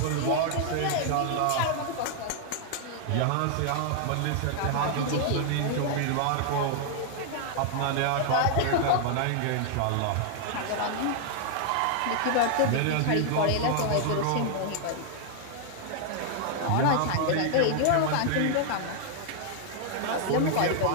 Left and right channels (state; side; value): different; both; correlation 0.00